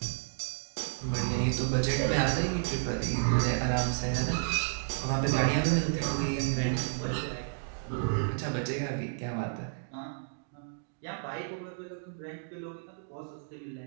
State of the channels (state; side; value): silent; left; digital silence